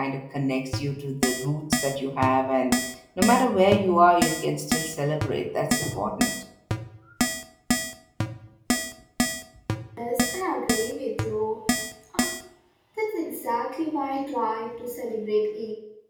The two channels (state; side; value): identical; both; correlation 1.00